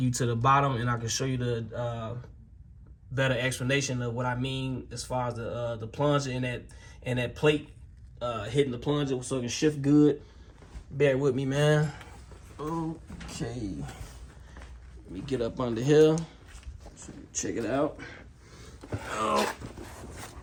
you to the bottom, and I can show you the better explanation of what I mean as far as the plunger and that plate hitting the plunger so it can shift good. Bear with me, man. Okay, let me get up under here. So check it out.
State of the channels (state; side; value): identical; both; correlation 1.00